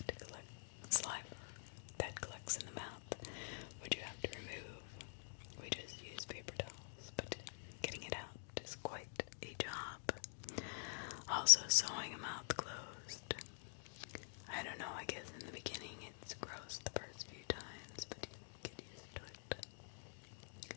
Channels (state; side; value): silent; right; digital silence